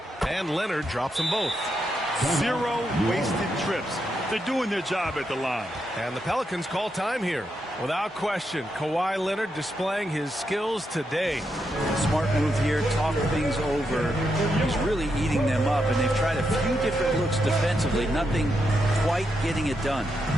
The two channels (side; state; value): both; normal; correlation 0.83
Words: And Leonard drops them both. 0 wasted trips. They're doing their job at the line. And the Pelicans call time here. Without question, Kawhi Leonard displaying his skills today. Smart move here, talk things over. He's really eating them up, and they've tried a few different looks defensively. Nothing quite getting it done.